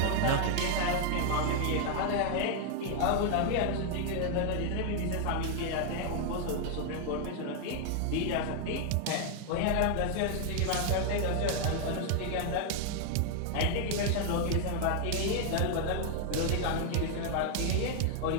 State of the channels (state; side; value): different; both; correlation 0.00